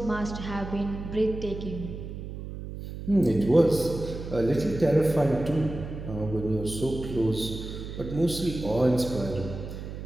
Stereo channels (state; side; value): noise; right; hum, 9 dB below the sound